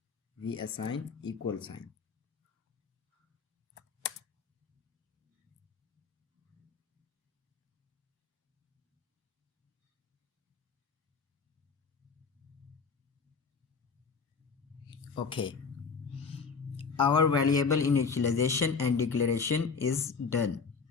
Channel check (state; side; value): quieter; right; 5.3 dB